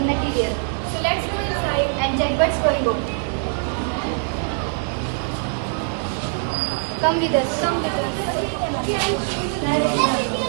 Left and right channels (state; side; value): silent; left; digital silence